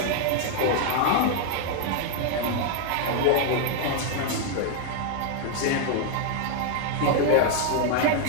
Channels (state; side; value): different; both; correlation 0.00